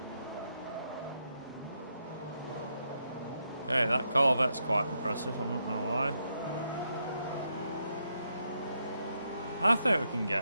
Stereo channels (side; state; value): both; inverted; correlation -0.80